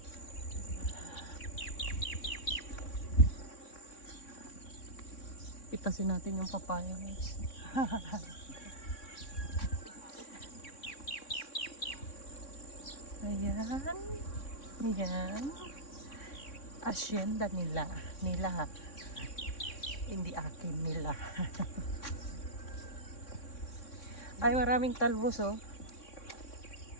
Pitasin natin yung papaya, guys. Ayan. Ayan. Asyenda nila. Nila. Hindi akin nila. Ay, maraming talbos, oh.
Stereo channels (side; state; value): right; late; 3.6 ms